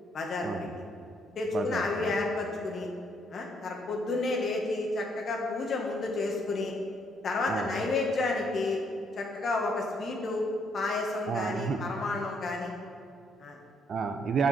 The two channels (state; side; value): normal; both; correlation 0.71